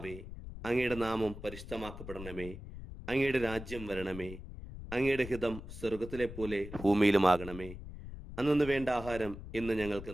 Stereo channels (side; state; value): left; noise; rumble, 12 dB below the sound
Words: അങ്ങയുടെ നാമം പരിശുദ്ധമാക്കപ്പെടണമേ. അങ്ങയുടെ രാജ്യം വരണമേ. അങ്ങയുടെ ഹിതം സ്വർഗത്തിലെ പോലെ ഭൂമിയിലുമാകണമേ. അന്നു വേണ്ട ആഹാരം ഇന്ന് ഞങ്ങൾക്ക്